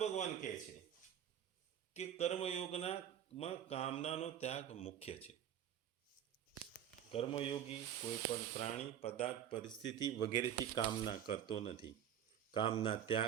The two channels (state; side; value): quieter; left; 9.9 dB